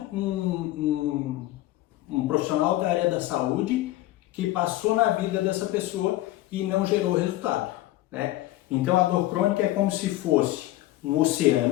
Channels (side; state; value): right; quieter; 16.3 dB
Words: profissional da área da saúde que passou na vida dessa pessoa e não gerou resultado. Né? Então a dor crônica é como se fosse um